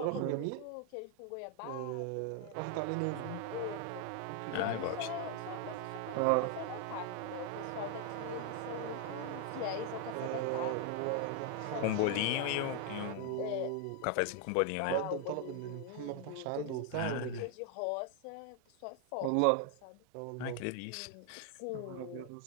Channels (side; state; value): both; different; correlation 0.00